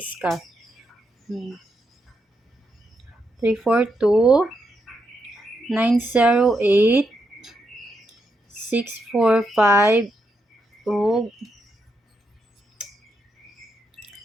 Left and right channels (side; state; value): both; normal; correlation 0.82